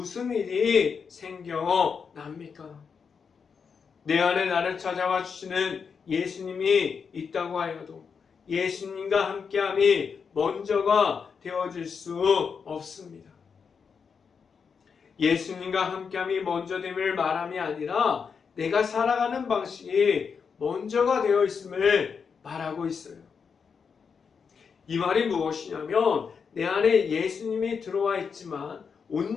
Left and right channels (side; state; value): right; quieter; 6.0 dB